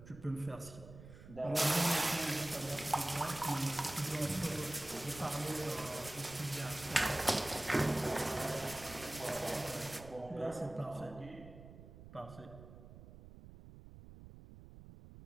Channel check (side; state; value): right; noise; rumble, 16 dB below the sound